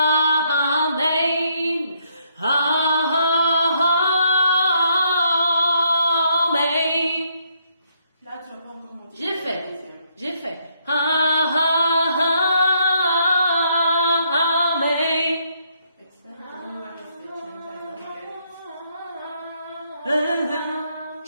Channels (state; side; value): inverted; both; correlation -0.72